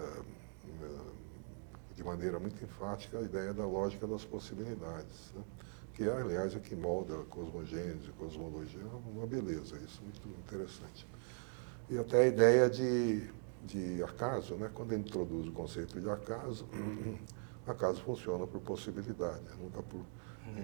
de maneira muito enfática a ideia da lógica das possibilidades, né? Que é, aliás, o que molda a cosmogênese, a cosmologia, é uma beleza, isso é muito interessante. E até a ideia de acaso, né? Quando ele introduz o conceito de acaso funciona por possibilidade, nunca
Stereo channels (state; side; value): silent; left; 50 dB below the other